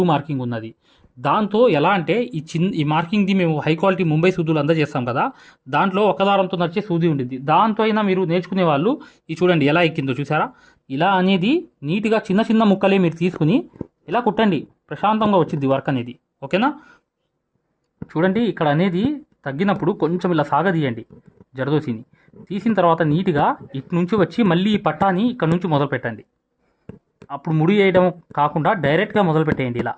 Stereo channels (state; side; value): identical; both; correlation 1.00